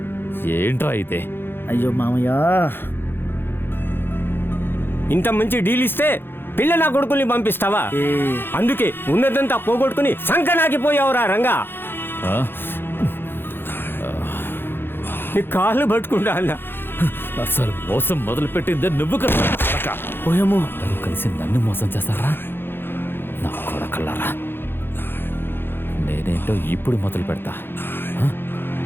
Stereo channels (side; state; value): right; late; 0.10 ms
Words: ఏంట్రా అయితే? అయ్యో మామయ్య, ఇంత మంచి డీల్ ఇస్తే పిల్ల నా కొడుకుల్ని పంపిస్తావా? అందుకే ఉన్నదంతా పోగొట్టుకుని సంకనాకిపోయావురా రంగా. నీ కాళ్ళు పట్టుకుంటా అన్నా. అసలు మోసం మొదలు పెట్టిందే నువ్వు కదా. పోయేమో కలిసి నన్ను మోసం చేస్తారా నా కొడకల్లారా? నేనేంటో ఇప్పుడు మొదలు పెడతా.